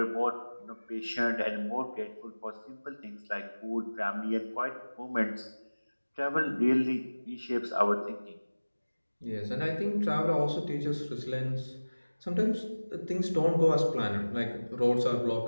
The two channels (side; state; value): both; inverted; correlation -1.00